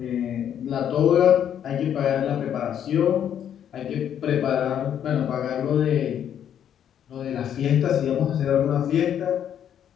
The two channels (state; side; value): quieter; right; 9.5 dB